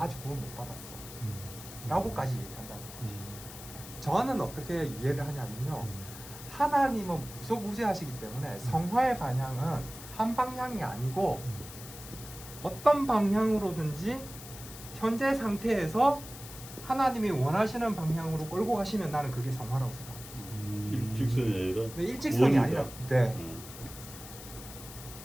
아직 구원 못 받았어 라고까지 얘기한다는 거죠. 저는 어떻게 이해를 하냐면요, 하나님은 무소부재하시기 때문에 성화의 방향은 한 방향이 아니고 어떤 방향으로든지 현재 상태에서 하나님이 원하시는 방향으로 끌고 가시면 나는 그게 성화라고 생각합니다. 일직선이 아니라 네, 일직선이 아니라 네.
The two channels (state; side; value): noise; left; hiss, 14 dB below the sound